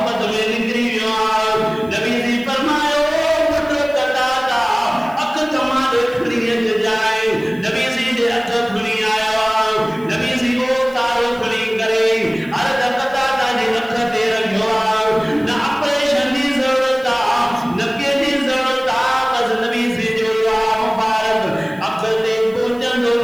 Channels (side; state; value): right; noise; hiss, 27 dB below the sound